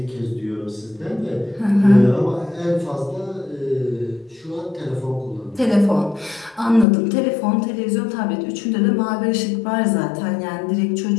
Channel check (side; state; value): right; drops out; at 6.9 s